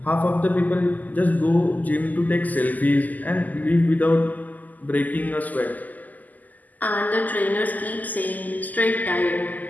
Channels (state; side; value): late; right; 0.081 ms